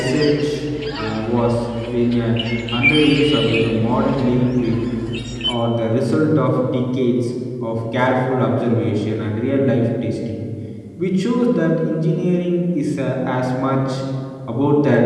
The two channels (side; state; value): both; identical; correlation 1.00